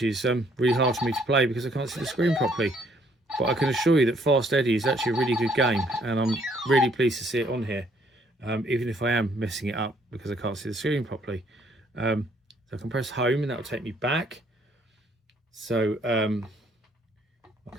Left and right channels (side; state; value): both; normal; correlation 0.65